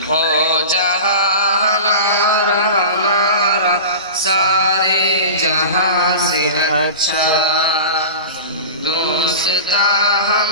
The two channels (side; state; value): both; inverted; correlation -0.33